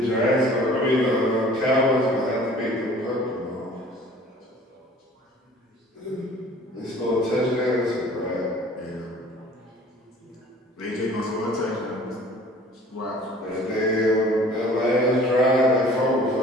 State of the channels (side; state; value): both; normal; correlation 0.49